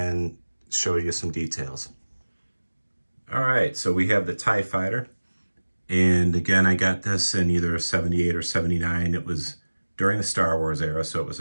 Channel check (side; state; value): both; inverted; correlation -1.00